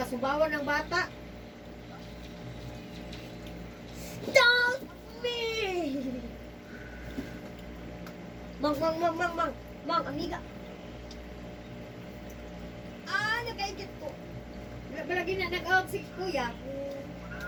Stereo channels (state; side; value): identical; both; correlation 1.00